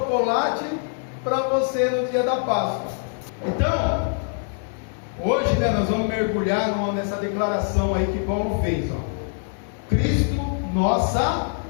para você no dia da Páscoa. Então, hoje nós vamos mergulhar nessa declaração aí que Paulo fez, Cristo, nossa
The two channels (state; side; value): silent; right; 60 dB below the other